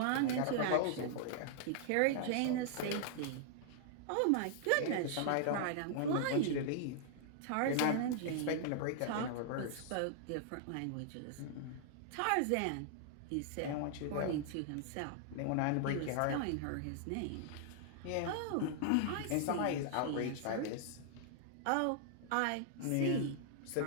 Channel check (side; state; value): both; different; correlation -0.01